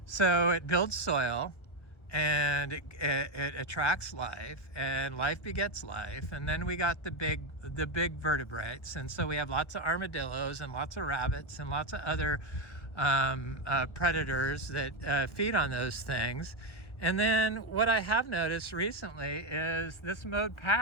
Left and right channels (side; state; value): right; late; 1.4 ms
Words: so it builds soil, and it attracts life, and life begets life. And then we got the big vertebrates, and so we have lots of armadillos and lots of rabbits and lots of other predators that feed on those things. And then what I have noticed recently is this mowed